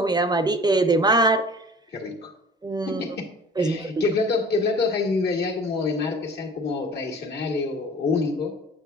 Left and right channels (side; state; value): both; normal; correlation 0.45